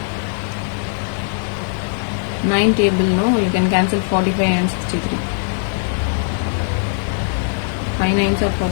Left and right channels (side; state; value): right; silent; digital silence